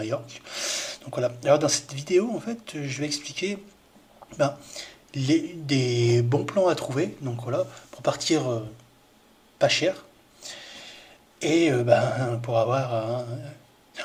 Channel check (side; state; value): both; identical; correlation 1.00